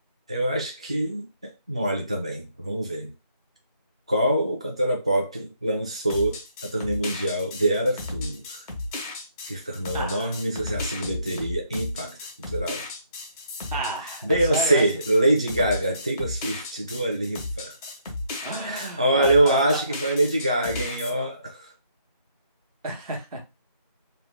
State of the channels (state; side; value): inverted; both; correlation -0.71